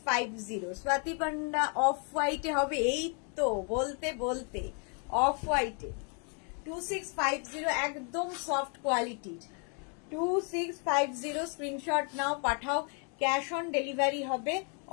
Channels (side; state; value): right; quieter; 39.6 dB